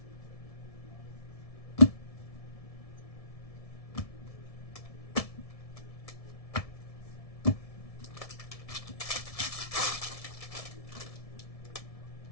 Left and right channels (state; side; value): late; right; 1.7 ms